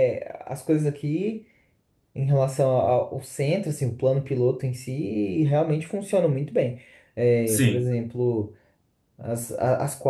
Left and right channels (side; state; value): both; identical; correlation 1.00